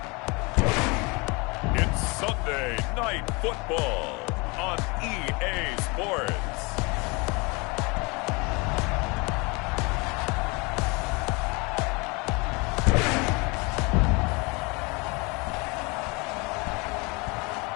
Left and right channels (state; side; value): quieter; right; 27.9 dB